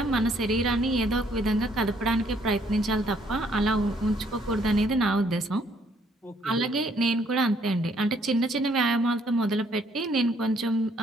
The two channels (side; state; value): both; normal; correlation 0.66